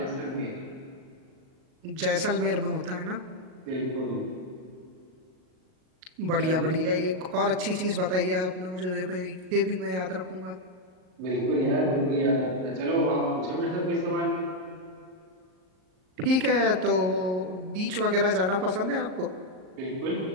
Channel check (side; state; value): left; late; 38 ms